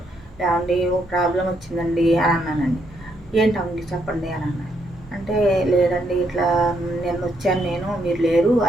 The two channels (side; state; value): both; normal; correlation 0.75